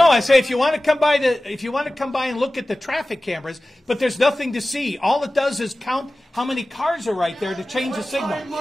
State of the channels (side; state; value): both; normal; correlation 0.96